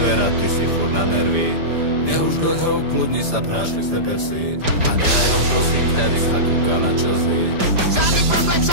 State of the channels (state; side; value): late; left; 5.0 ms